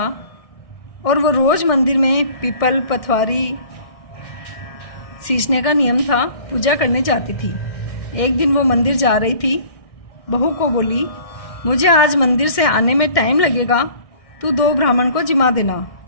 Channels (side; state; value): right; late; 1.6 ms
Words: और वो रोज़ मंदिर में पीपल पथवारी सींचने का नियम था, पूजा करने जाती थी। एक दिन वो मंदिर जा रही थी, बहू को बोली, मुझे आज मंदिर से आने में टाइम लगेगा, तू 2 ब्राह्मण को जिमा देना।